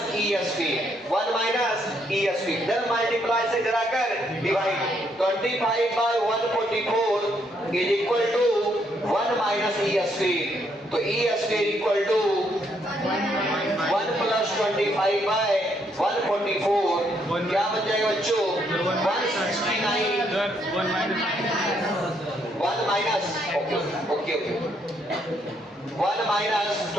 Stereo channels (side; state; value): both; normal; correlation 0.73